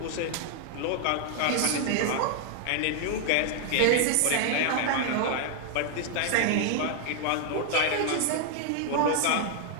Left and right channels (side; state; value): both; different; correlation 0.00